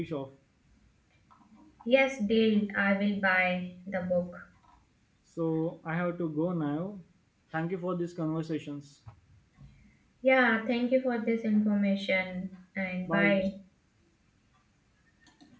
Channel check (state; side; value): identical; both; correlation 1.00